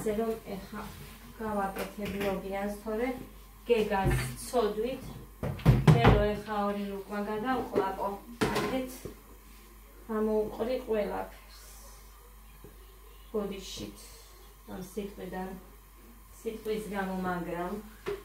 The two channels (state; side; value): identical; both; correlation 1.00